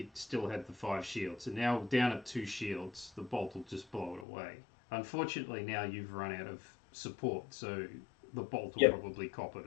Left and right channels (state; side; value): drops out; right; at 4.2 s